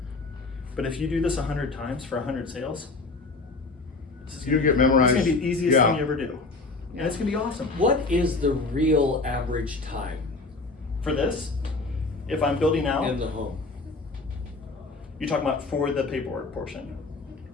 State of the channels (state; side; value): quieter; right; 3.5 dB